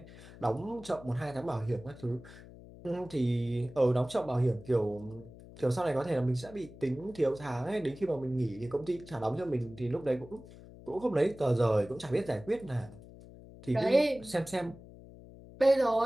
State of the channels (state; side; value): noise; left; hum, 18 dB below the sound